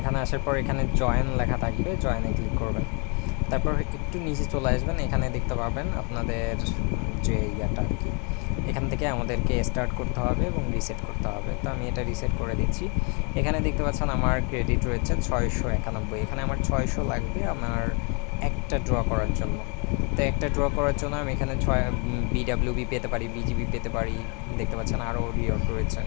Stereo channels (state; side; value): quieter; right; 35.3 dB